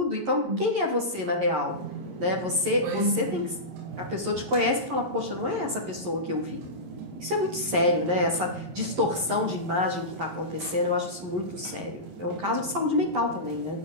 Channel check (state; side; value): late; left; 11 ms